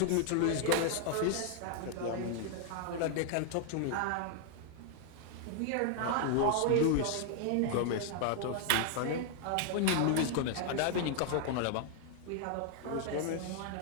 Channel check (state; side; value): different; both; correlation 0.00